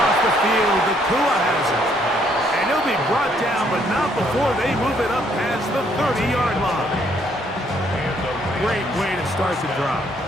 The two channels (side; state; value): both; normal; correlation 0.68